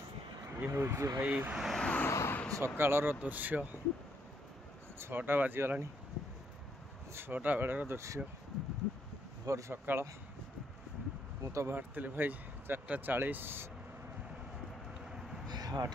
ये हूँ भाई सकाळर दृश्य 6टा बाजीगला 6टा बेलर दृश्य भोर सकाळ। मु तो बाहर भाई 4:40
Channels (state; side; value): normal; both; correlation 0.73